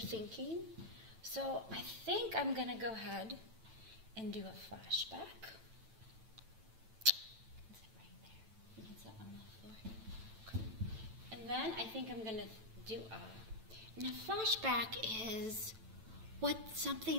So I think I'm going to go ahead and do a flashback. You can sit right there. You can sit on the floor. Okay. And then I think I'm going to do and a flashback is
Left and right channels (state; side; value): late; left; 9.0 ms